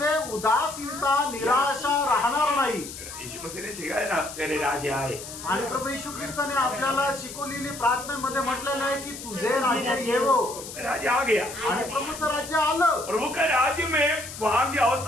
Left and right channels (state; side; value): noise; left; hiss, 11 dB below the sound